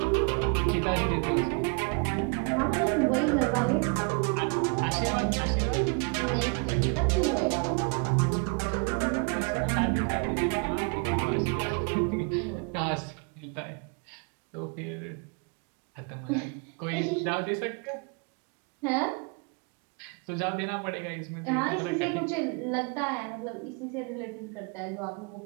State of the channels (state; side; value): quieter; left; 34.8 dB